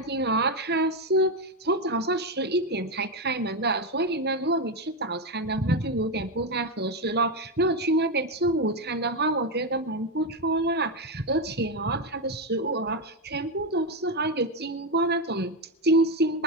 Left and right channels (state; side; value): normal; both; correlation 0.08